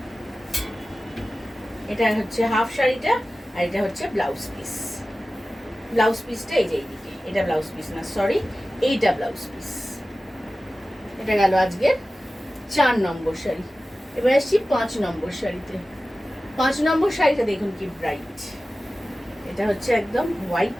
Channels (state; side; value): normal; both; correlation 0.95